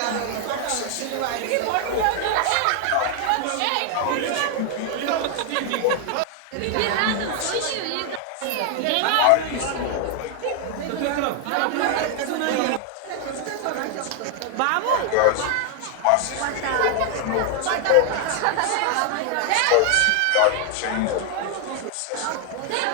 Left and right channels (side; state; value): both; different; correlation 0.00